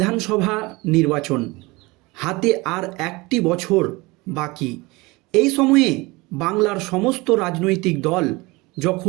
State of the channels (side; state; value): left; quieter; 23.4 dB